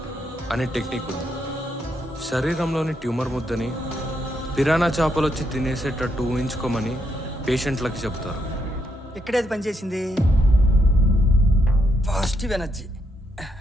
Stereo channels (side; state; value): both; normal; correlation 0.78